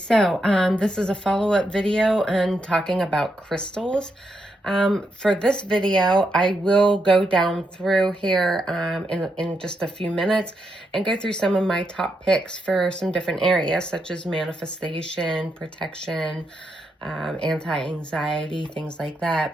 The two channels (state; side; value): normal; both; correlation 0.81